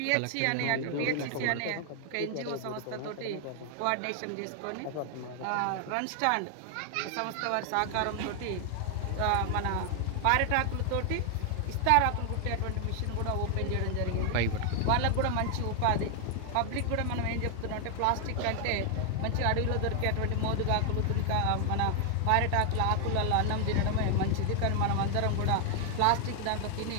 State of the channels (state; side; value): different; both; correlation 0.00